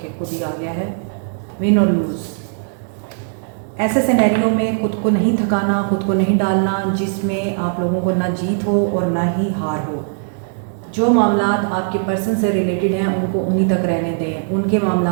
खुद ही आ गया है, विन और लूज़। ऐसे सिनेरियो में खुद को नहीं थकाना, खुद को नहीं डालना जिसमें आप लोगों को ना जीत हो और ना ही हार हो। जो मामलात आपके पर्सन से रिलेटेड हैं उनको उन्हीं तक रहने दें, उनके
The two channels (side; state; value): left; silent; digital silence